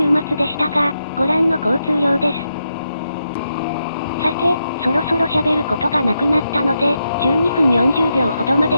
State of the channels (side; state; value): both; inverted; correlation -0.83